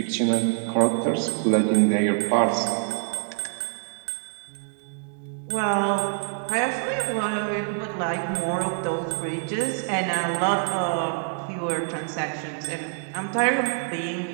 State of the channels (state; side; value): silent; left; 61 dB below the other